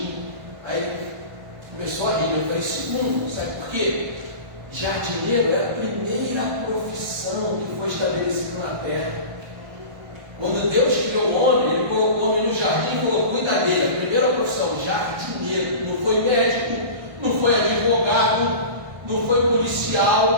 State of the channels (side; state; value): left; late; 1.2 ms